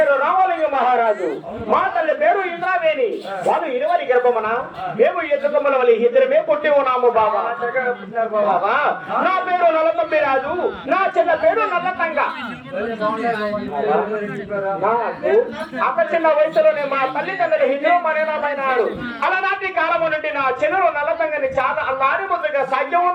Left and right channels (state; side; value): identical; both; correlation 1.00